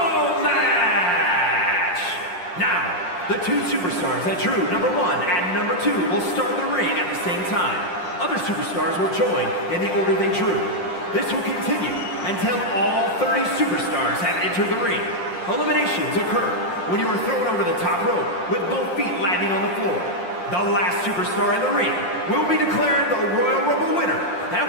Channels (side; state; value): right; late; 5.6 ms